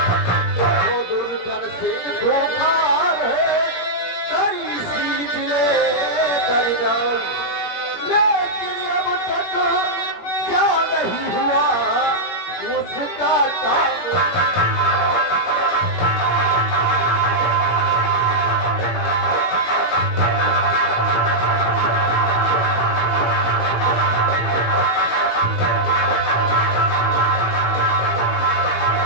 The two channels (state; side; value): late; right; 17 ms